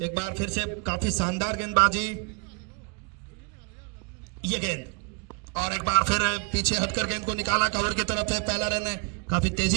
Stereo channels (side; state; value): left; quieter; 32.9 dB